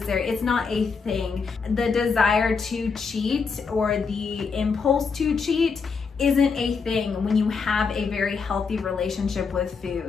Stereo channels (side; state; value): right; quieter; 5.2 dB